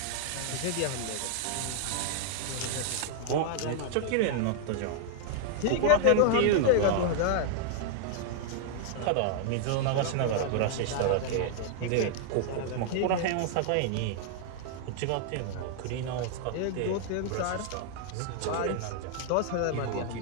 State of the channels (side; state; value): both; different; correlation 0.00